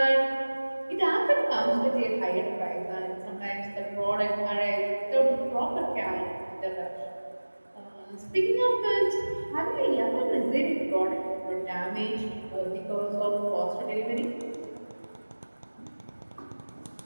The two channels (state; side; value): inverted; both; correlation -1.00